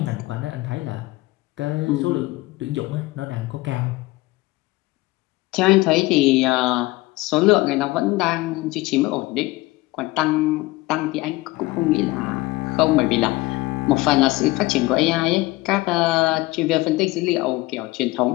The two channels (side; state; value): right; quieter; 20.5 dB